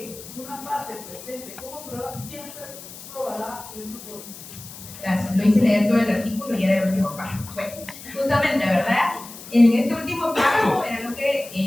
una parte presente como prueba siempre probará en su forma. Gracias, lo hice leer todo el artículo y era el último párrafo. Bueno, justamente, ¿verdad? En este último párrafo era lo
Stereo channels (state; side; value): noise; left; hiss, 15 dB below the sound